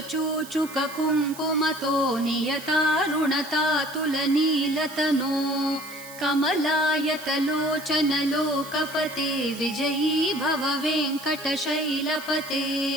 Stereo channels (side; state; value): right; noise; hiss, 16 dB below the sound